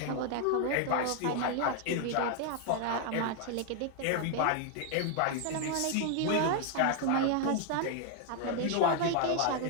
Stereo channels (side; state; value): both; different; correlation 0.00